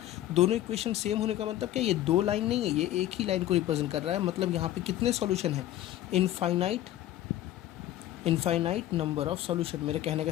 दोनों इक्वेशन सेम होने का मतलब क्या, ये दो लाइन नहीं है, ये एक ही लाइन को रिप्रेजेंट कर रहा है। मतलब यहाँ पे कितने सॉल्यूशन है, इनफाइनाइट नंबर ऑफ सॉल्यूशन। मेरे कहने का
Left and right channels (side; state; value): right; quieter; 13.5 dB